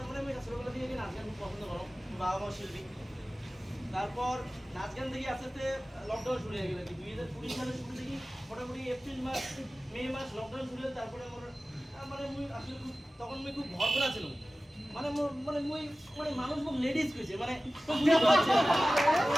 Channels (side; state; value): both; normal; correlation 0.96